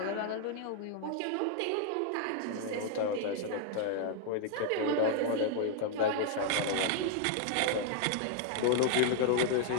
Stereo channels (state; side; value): different; both; correlation 0.00